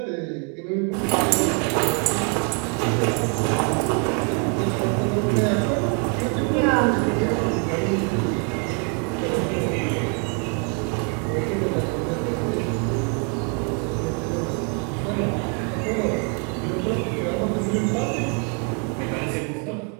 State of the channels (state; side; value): quieter; left; 39.0 dB